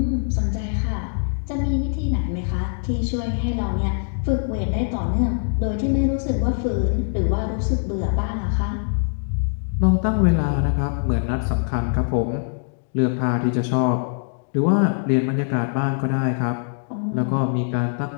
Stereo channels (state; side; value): silent; right; digital silence